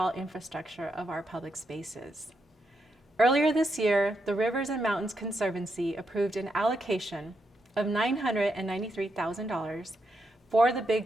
infrastructure of our public spaces. Earlier this year, the Rivers and Mountains Conservancy approved an allocation of $993,000 for the Big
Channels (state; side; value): normal; both; correlation 0.82